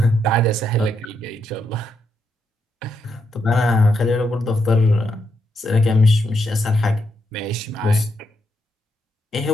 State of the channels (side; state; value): both; normal; correlation 0.80